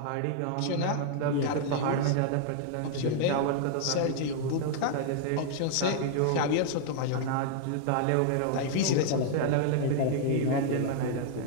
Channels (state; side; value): different; both; correlation 0.00